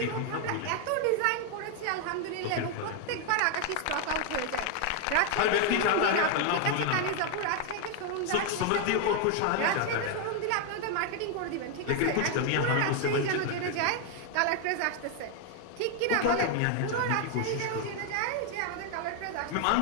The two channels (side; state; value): both; different; correlation 0.00